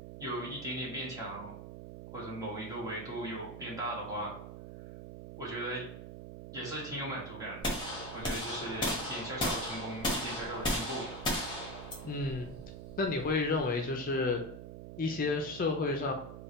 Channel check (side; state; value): right; noise; hum, 10 dB below the sound